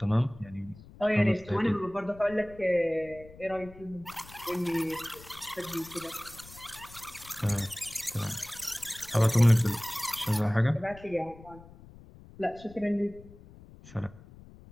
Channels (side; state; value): left; noise; rumble, 20 dB below the sound